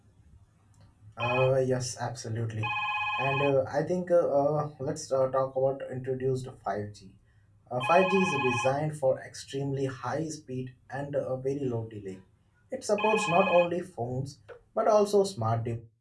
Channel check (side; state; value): both; identical; correlation 1.00